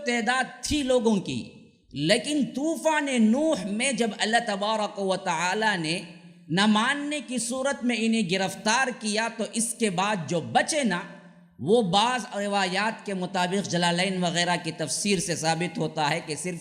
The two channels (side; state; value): both; identical; correlation 1.00